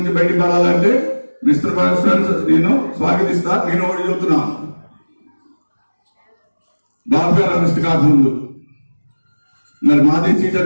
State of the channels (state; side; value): inverted; both; correlation -1.00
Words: బయటికి పడాలంటే మిత్రపక్షాన్ని నేను స్వాగతిస్తా. నేను ఒకటి చెబుతున్నా, బాబు గారు అరెస్ట్ కాకముందు మరి మాదే